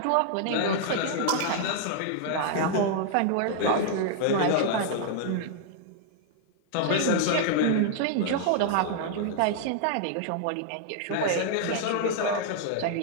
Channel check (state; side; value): different; both; correlation -0.01